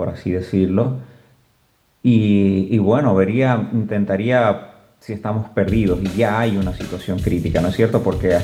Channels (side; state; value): both; identical; correlation 1.00